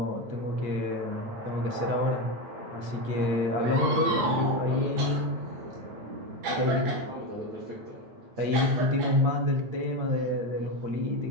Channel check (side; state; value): left; late; 8.6 ms